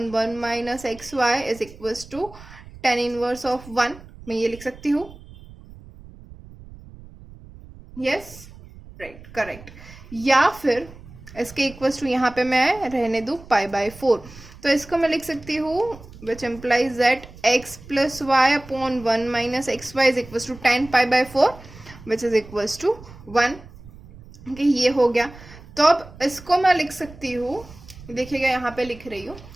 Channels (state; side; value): noise; right; rumble, 19 dB below the sound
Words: 1 minus x y is equals to tan inverse of 1. मैं ये लिख सकती हूँ, यस राइट करेक्ट. या फिर इसके इक्वल्स टू यहाँ पे मैं रहने दूँ पाई बाय 4, तो इसको मैं लिख सकती हूँ which implies that x plus y upon 1 minus x y is equals to tan pi by 4 which is equals to 1. Okay ये हो गया. तो अब इसको मैं लिख सकती हूँ, देखिएगा यहाँ पे लिख रही हूँ.